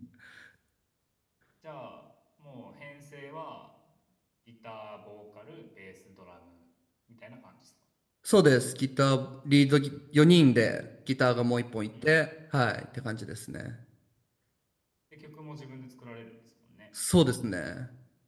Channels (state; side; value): identical; both; correlation 1.00